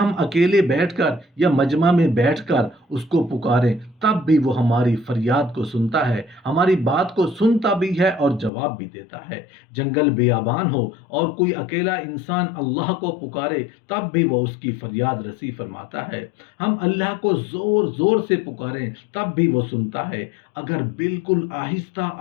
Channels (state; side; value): drops out; right; at 8.5 s